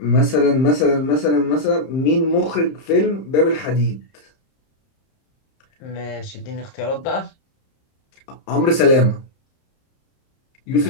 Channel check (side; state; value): right; late; 30 ms